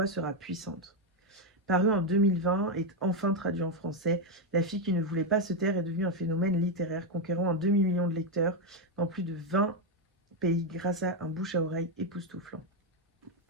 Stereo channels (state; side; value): normal; both; correlation 0.04